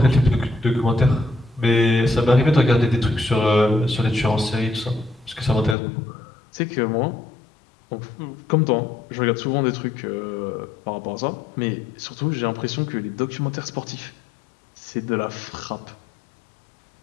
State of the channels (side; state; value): right; drops out; at 5.8 s